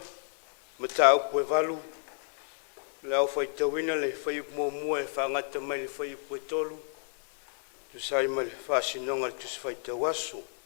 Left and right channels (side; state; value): right; silent; 57 dB below the other